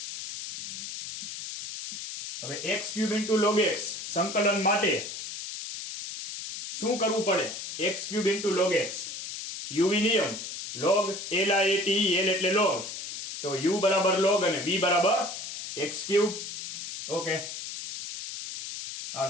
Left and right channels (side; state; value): left; noise; hiss, 8 dB below the sound